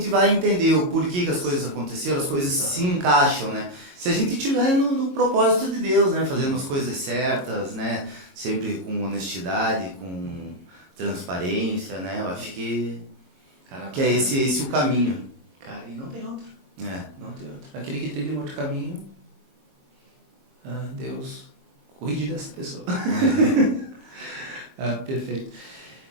vai entender o porquê que as coisas aconteceram, as coisas se encaixam, né? Se a gente estiver no propósito de Deus, né? Fazendo as coisas certas, né? Sempre com honestidade, com transparência, né? Eu acho que é esse o caminho. Cara, e não tem outro. É. Não tem outro. Aquele que trilha um outro caminho, Deus cuide dessa pessoa. Perfeito.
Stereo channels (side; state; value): left; late; 22 ms